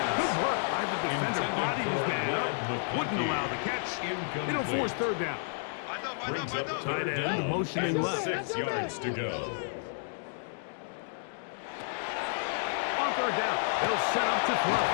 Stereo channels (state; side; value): silent; right; digital silence